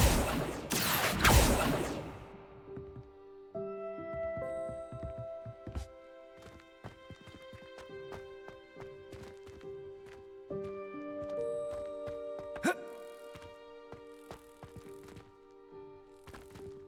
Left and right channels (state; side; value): identical; both; correlation 1.00